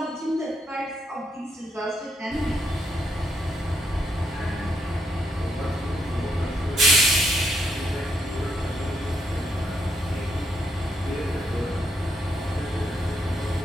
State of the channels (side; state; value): both; normal; correlation 0.77